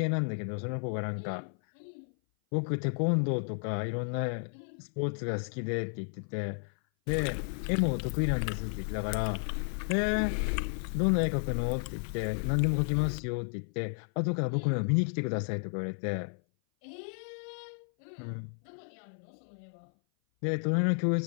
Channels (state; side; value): silent; right; 56 dB below the other